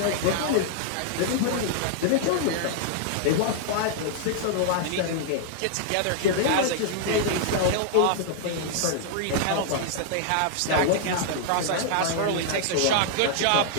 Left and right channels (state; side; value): different; both; correlation -0.01